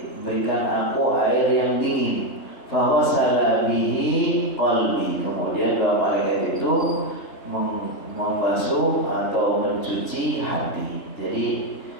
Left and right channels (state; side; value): late; right; 3.3 ms